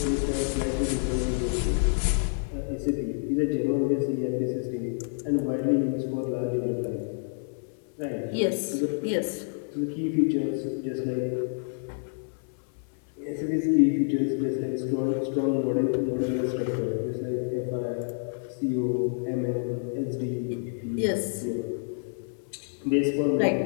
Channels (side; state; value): right; silent; 59 dB below the other